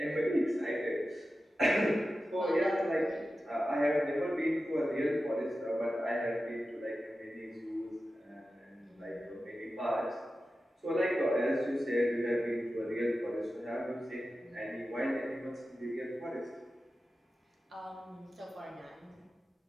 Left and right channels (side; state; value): both; normal; correlation 0.93